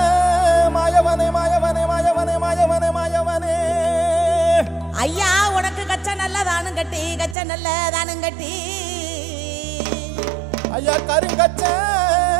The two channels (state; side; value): drops out; left; at 7.4 s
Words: மாயவனே மாயவனே மாயவனே மாயவனே மாயவனே ஐயா உனக்கு கச்ச நல்லதானும் கட்டி கச்ச நல்லதானும் கட்டி ஐயா கருங்கச்ச